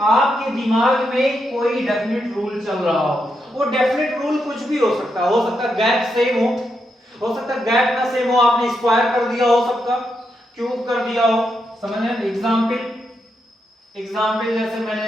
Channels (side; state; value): both; normal; correlation 0.83